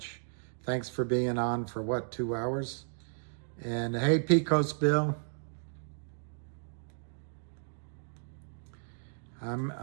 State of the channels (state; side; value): silent; left; digital silence